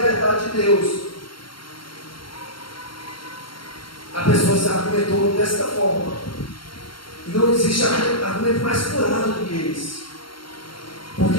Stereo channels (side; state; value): right; late; 0.73 ms